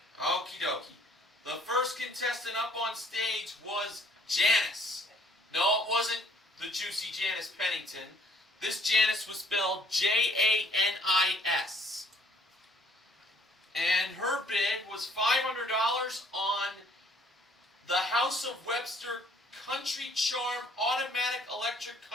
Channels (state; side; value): normal; both; correlation 0.61